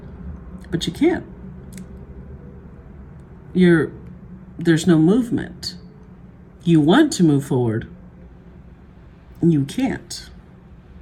But you can't. There's no movement. You want to move forward, and you can't.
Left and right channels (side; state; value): both; identical; correlation 1.00